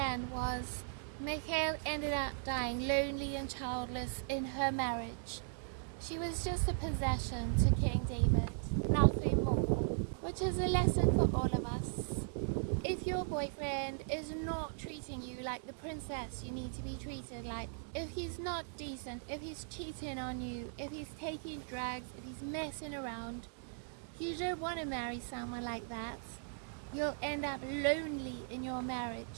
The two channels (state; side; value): silent; left; digital silence